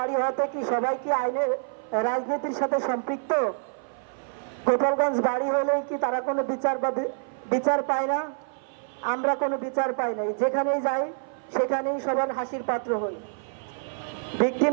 হওয়াতে কি সবাই কি আইনের রাজনীতির সাথে সম্পৃক্ত? গোপালগঞ্জ বাড়ি হলেই কি তারা কোনো বিচার পায় না? আমরা কোনো বিচার পাই নাই, যেখানেই যাই সেখানেই সবার হাসির পাত্র হই। ভিকটিম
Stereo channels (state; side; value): silent; left; 58 dB below the other